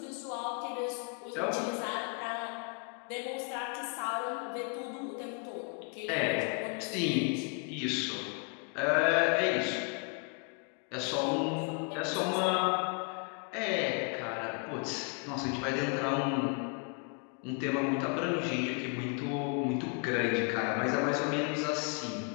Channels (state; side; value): quieter; right; 38.5 dB